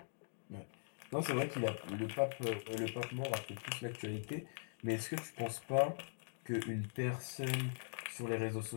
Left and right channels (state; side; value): silent; right; digital silence